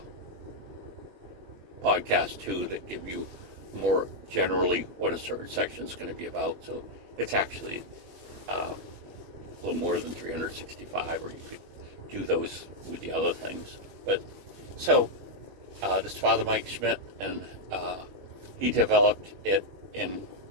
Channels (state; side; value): late; left; 21 ms